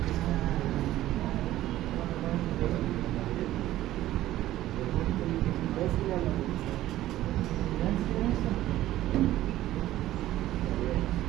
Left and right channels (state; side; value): quieter; left; 14.5 dB